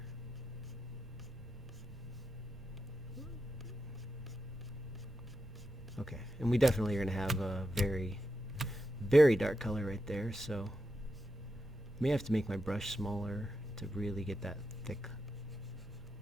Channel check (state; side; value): normal; both; correlation 0.87